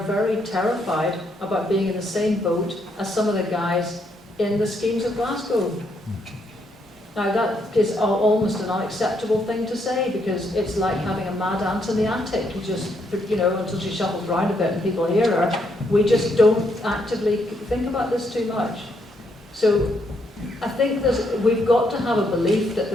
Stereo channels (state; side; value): normal; both; correlation 0.75